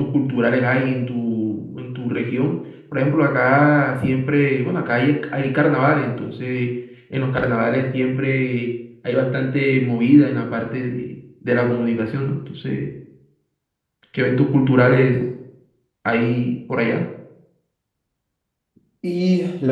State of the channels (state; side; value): identical; both; correlation 1.00